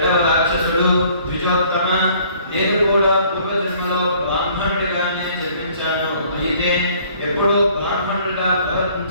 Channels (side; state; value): both; inverted; correlation -0.58